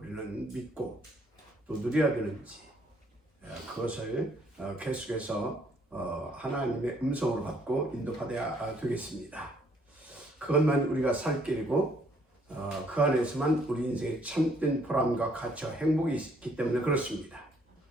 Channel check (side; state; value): both; normal; correlation 0.66